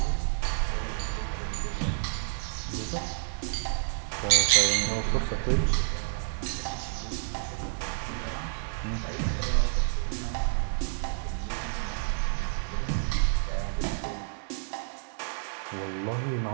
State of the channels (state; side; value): silent; left; digital silence